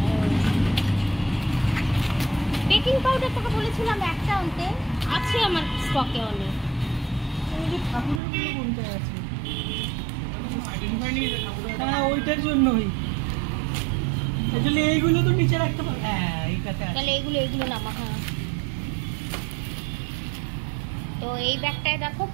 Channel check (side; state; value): left; drops out; at 8.2 s